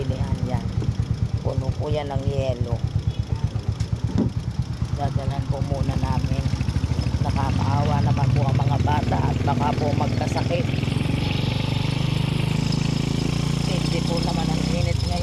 yan. Puno po yan ng yelo. Dadalan po muna namin. Nakakaawa naman po ang mga bata at baka po magkasakit. Hindi po naman ang init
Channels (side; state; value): both; identical; correlation 1.00